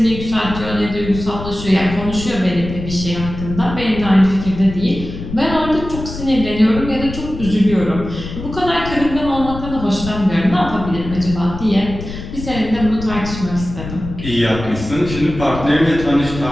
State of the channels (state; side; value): noise; left; rumble, 9 dB below the sound